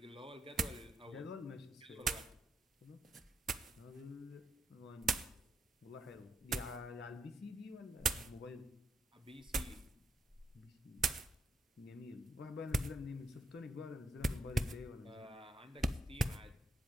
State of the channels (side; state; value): both; normal; correlation 0.78